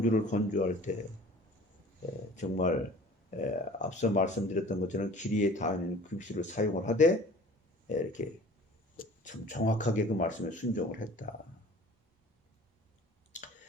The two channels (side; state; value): both; normal; correlation 0.46